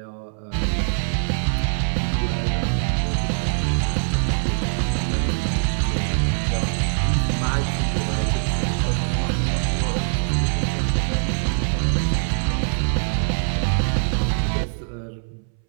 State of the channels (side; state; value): left; silent; 64 dB below the other